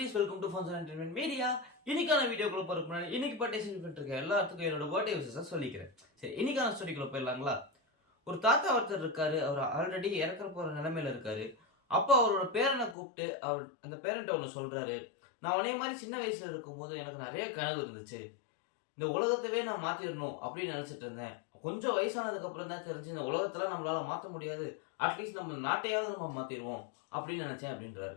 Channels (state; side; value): drops out; right; at 13.0 s